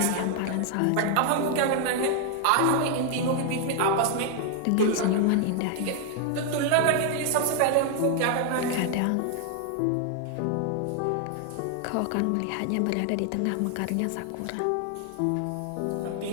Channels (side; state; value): both; different; correlation 0.00